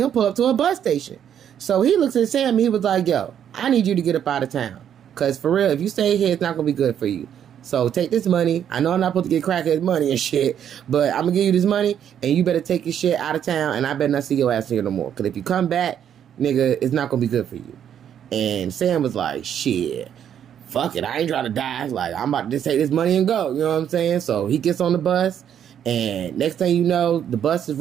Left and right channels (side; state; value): left; quieter; 9.3 dB